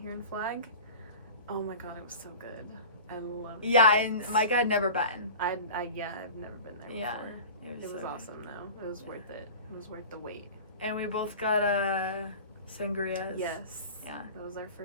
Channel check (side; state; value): both; inverted; correlation -0.37